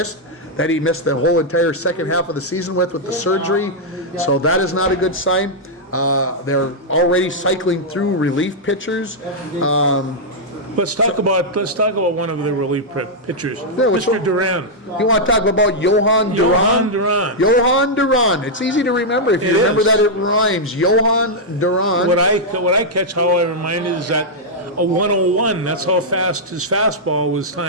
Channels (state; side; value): normal; both; correlation -0.06